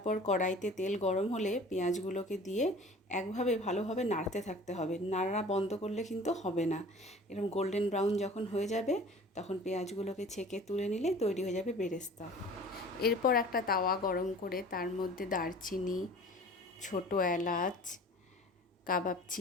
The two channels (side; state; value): both; normal; correlation 0.44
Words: কড়াইতে তেল গরম হলে পেঁয়াজগুলোকে দিয়ে একভাবে ভালোভাবে নাড়তে থাকতে হবে। নাড়া বন্ধ করলে কিন্তু হবে না। এরকম গোল্ডেন ব্রাউন যখন হয়ে যাবে তখন পেঁয়াজগুলোকে ছেঁকে তুলে নিলে তৈরি হয়ে যাবে বেরেস্তা। এরপর একটা তাওয়া গরম করে তার মধ্যে দারচিনি, ছোটো এলাচ, কাবাব